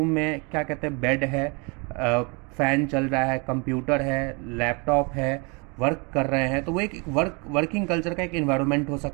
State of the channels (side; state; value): left; quieter; 31.4 dB